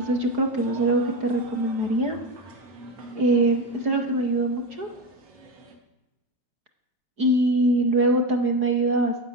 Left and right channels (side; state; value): left; late; 4.7 ms